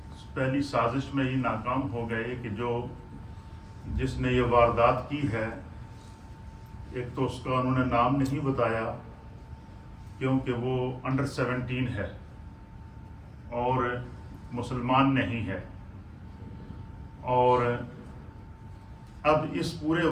پہلی سازش میں ہی ناکام ہو گئے، کہ جس نے یہ واردات کی ہے، ایک تو اس کا انہوں نے نام نہیں بتایا کیونکہ وہ انڈر 17 ہے اور مسلمان نہیں ہے، اور اب اس پورے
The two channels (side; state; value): both; identical; correlation 1.00